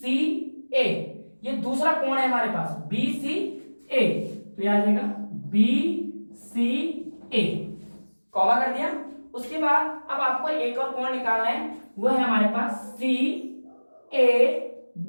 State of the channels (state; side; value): inverted; both; correlation -1.00